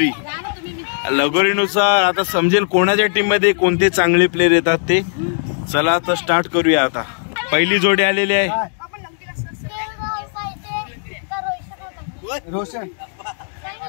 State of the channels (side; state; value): right; silent; digital silence